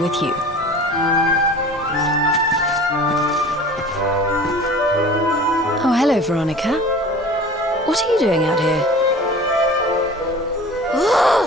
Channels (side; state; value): both; normal; correlation 0.41